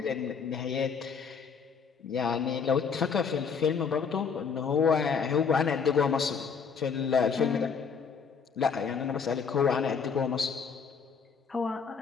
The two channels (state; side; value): quieter; right; 6.0 dB